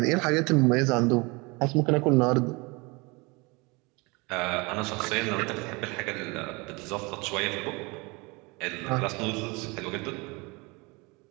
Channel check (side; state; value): left; quieter; 26.8 dB